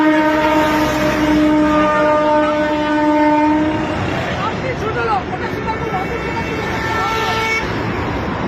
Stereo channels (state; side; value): identical; both; correlation 1.00